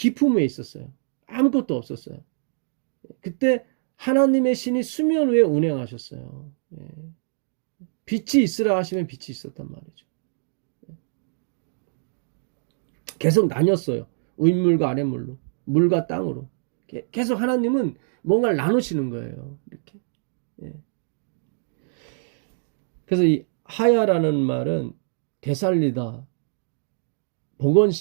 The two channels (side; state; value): left; silent; digital silence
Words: 있었어요. 아무것도 없었어요. 그때 하나님의 신이 수면 위에 운행하셨어요. 빛이 있으라 하시면 빛이 있었단 말이죠. 계속 나뉘었어요. 윗물과 아랫물로, 물과 땅으로. 계속 하나님은 뭔가를 나누시는 거예요. 이렇게. 그래서 이 하야라는 말은 되살리다,